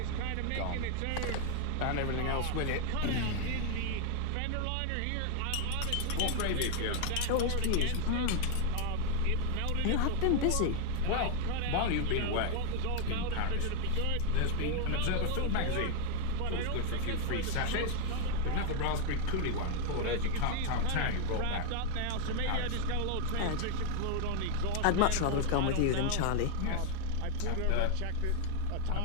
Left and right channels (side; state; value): both; different; correlation 0.01